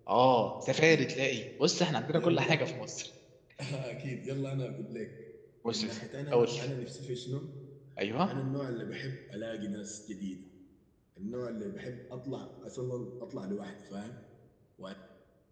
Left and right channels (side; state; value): both; identical; correlation 1.00